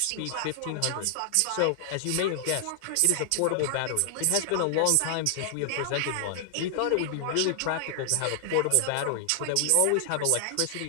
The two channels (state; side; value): different; both; correlation 0.00